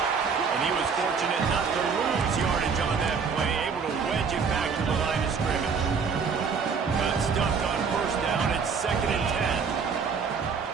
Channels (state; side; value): quieter; left; 5.7 dB